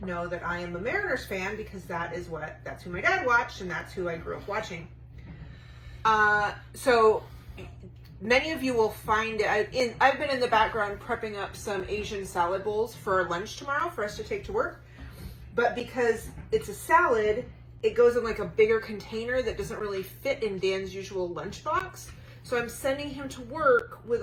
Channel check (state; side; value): identical; both; correlation 1.00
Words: know that I am a Mariners fan because that's who my dad watched and that's who I grew up watching. So many of you will find it. I've been in the background prepping up some Asian salad bowls for lunch tomorrow for us to take to work. But because it's a salad, it goes in like a bigger container that doesn't really fit in Dan's usual lunchbox. So I'm sending him to work with